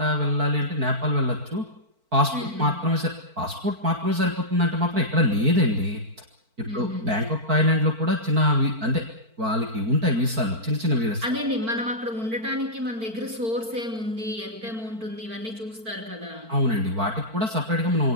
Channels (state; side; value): late; left; 4.5 ms